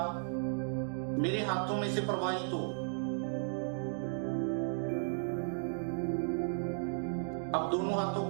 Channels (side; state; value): left; silent; digital silence